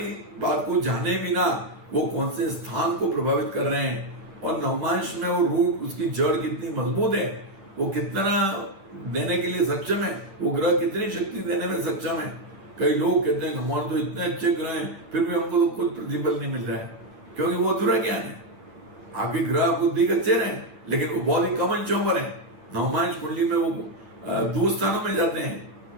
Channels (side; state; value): left; late; 10 ms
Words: बात को जाने बिना वो कौन से स्थान को प्रभावित कर रहे हैं, और नवमांश में वो रूट, उसकी जड़ कितनी मजबूत है, वो कितना देने के लिए सक्षम है, वो ग्रह कितनी शक्ति देने में सक्षम है। कई लोग कहते हैं हमारे तो इतने अच्छे ग्रह हैं फिर भी हमको तो कुछ प्रतिफल नहीं मिल रहा है, क्योंकि वो अधूरा ज्ञान है। आपके ग्रह आपको दिख अच्छे रहे लेकिन वो बहुत ही कम अंशों पर है। नवमांश कुंडली में वो दूर स्थानों में जाते हैं